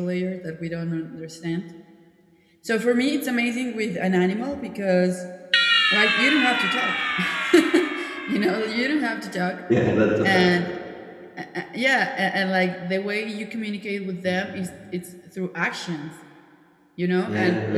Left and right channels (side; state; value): both; identical; correlation 1.00